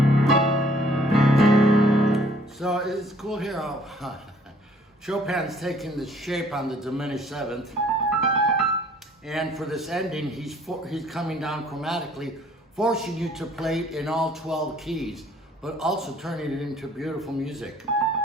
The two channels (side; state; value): both; normal; correlation 0.59